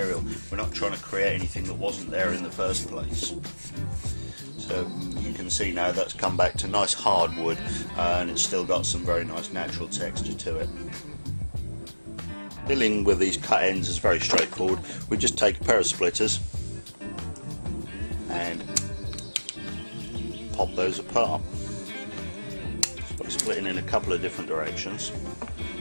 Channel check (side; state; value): both; inverted; correlation -1.00